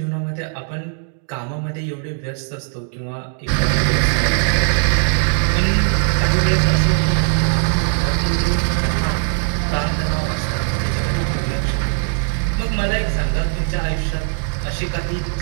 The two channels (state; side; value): silent; left; 66 dB below the other